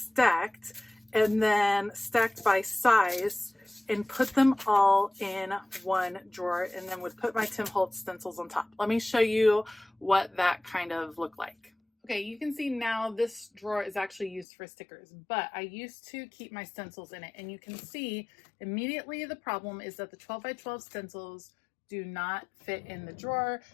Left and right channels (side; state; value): right; drops out; at 14.5 s